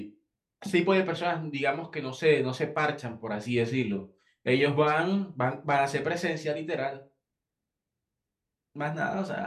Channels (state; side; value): identical; both; correlation 1.00